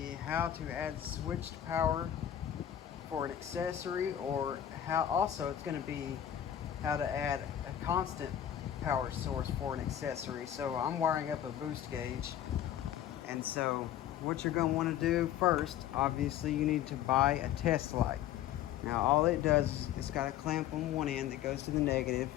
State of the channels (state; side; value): quieter; right; 11.0 dB